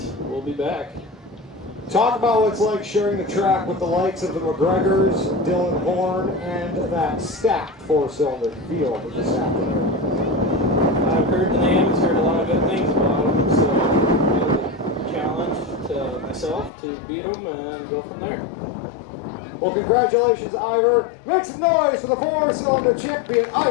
we'll be back. Talk about what it's like sharing the track with the likes of the McGregors, Dylan Horn, and that stacked four-cylinder field this afternoon. I've heard the names, heard a lot of good things about them, so it's a challenge to myself to beat them and go from there. Well, congratulations, Ivor. Make some noise for the four-cylinder champion,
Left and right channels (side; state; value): right; drops out; at 16.7 s